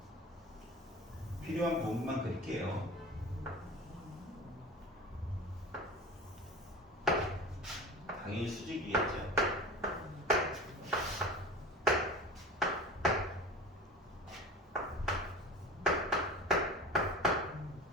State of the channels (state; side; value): normal; both; correlation 0.34